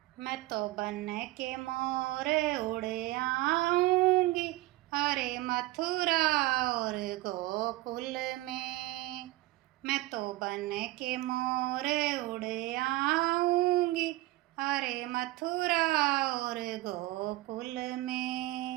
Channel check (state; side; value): quieter; left; 18.4 dB